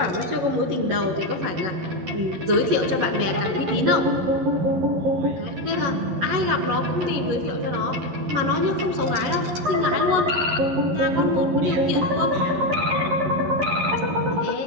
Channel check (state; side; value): late; left; 11 ms